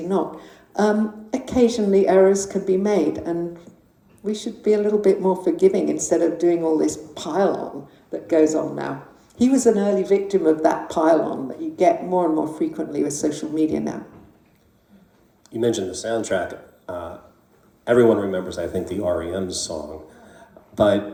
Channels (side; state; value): both; identical; correlation 1.00